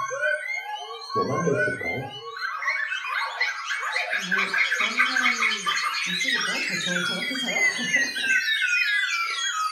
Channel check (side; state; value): both; identical; correlation 1.00